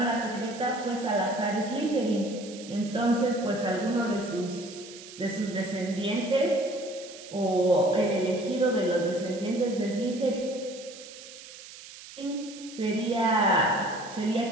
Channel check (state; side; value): noise; right; hiss, 16 dB below the sound